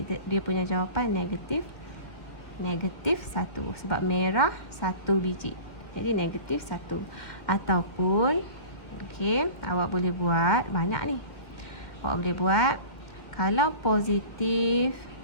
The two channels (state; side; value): late; right; 2.1 ms